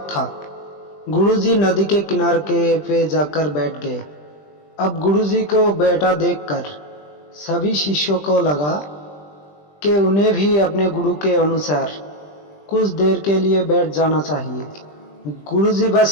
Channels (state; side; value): late; right; 20 ms